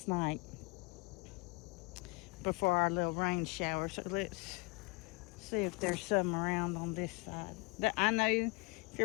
night before our little rain shower. So let's see if there's some around on this side. I know if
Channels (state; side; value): quieter; right; 27.5 dB